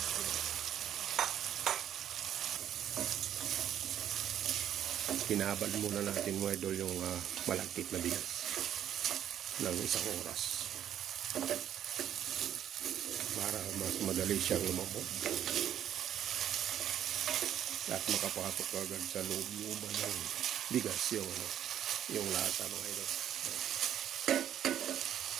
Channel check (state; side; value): quieter; left; 10.5 dB